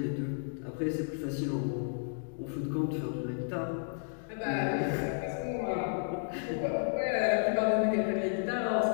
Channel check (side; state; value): right; silent; digital silence